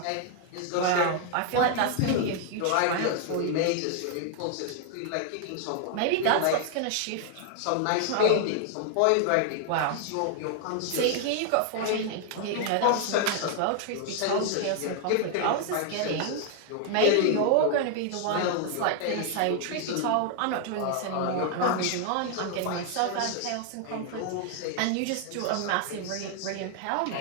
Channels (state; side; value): different; both; correlation 0.00